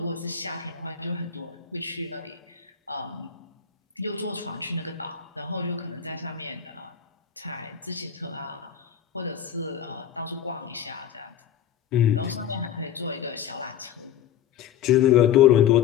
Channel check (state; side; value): quieter; right; 9.1 dB